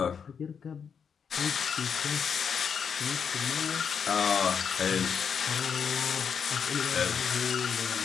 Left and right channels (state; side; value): quieter; right; 6.8 dB